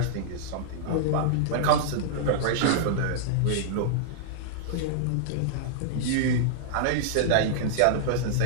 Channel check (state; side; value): different; both; correlation -0.01